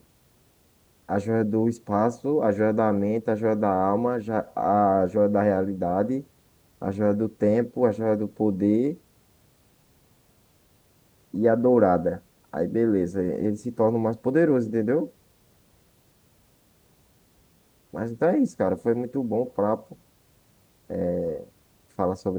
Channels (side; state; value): both; identical; correlation 1.00